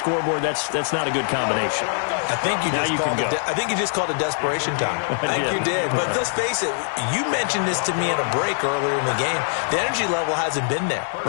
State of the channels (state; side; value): silent; right; digital silence